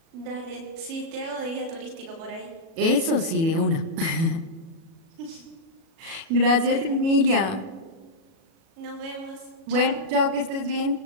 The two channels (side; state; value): left; late; 37 ms